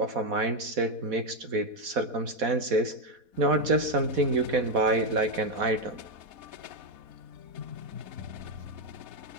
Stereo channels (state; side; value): late; left; 4.1 ms